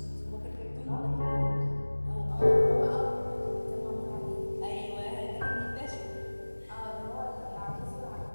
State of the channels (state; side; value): inverted; both; correlation -1.00